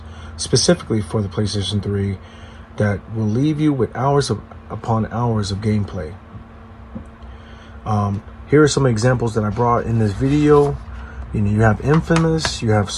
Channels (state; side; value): identical; both; correlation 1.00